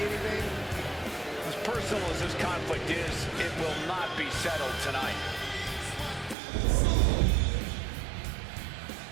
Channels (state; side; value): drops out; left; at 6.4 s